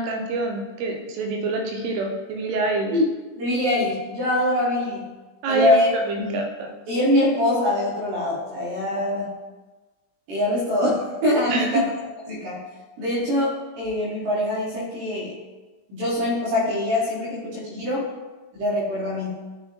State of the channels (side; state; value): left; late; 21 ms